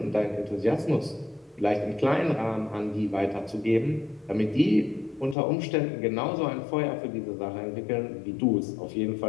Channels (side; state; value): right; drops out; at 5.4 s